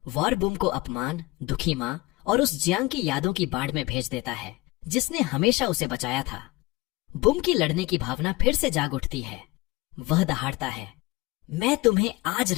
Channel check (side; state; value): right; quieter; 21.4 dB